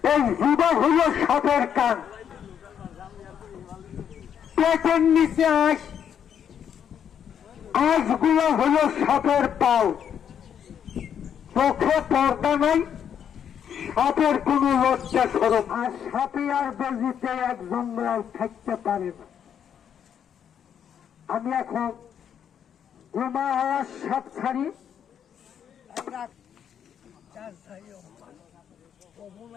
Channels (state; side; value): quieter; right; 8.6 dB